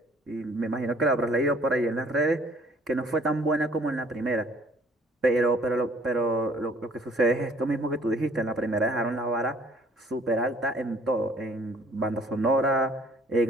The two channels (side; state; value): both; normal; correlation 0.58